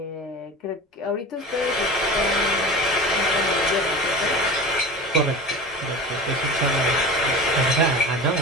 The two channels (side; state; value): both; normal; correlation 0.33